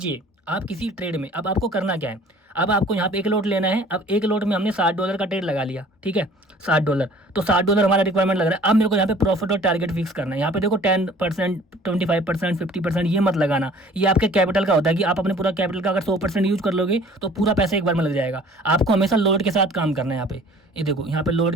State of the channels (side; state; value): both; normal; correlation 0.50